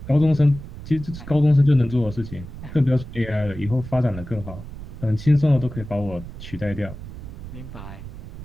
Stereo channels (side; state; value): right; noise; rumble, 12 dB below the sound